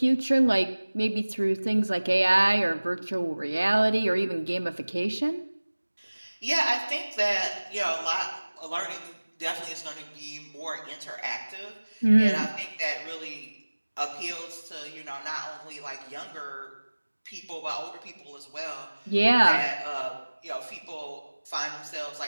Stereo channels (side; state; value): both; inverted; correlation -1.00